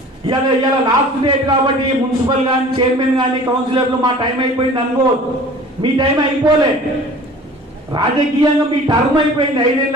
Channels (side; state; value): both; normal; correlation 0.45